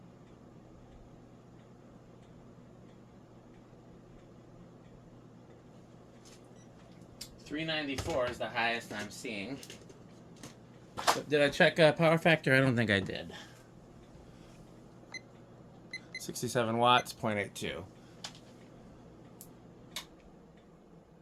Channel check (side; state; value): both; identical; correlation 1.00